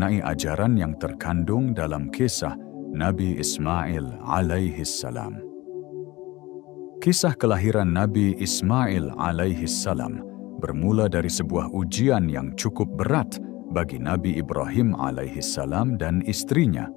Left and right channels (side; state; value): right; quieter; 20.1 dB